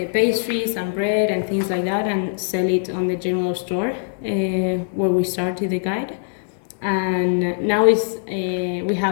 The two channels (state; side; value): silent; right; 64 dB below the other